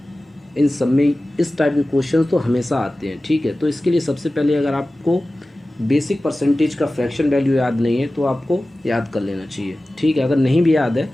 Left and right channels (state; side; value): normal; both; correlation 0.96